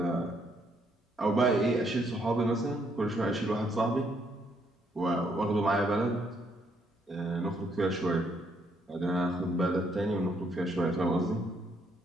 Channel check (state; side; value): normal; both; correlation 0.72